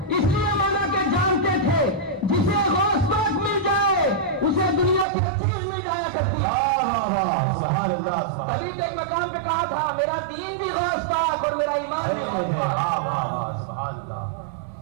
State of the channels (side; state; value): left; drops out; at 5.1 s